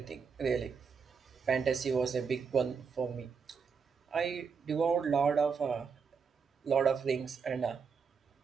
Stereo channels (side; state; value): left; quieter; 5.9 dB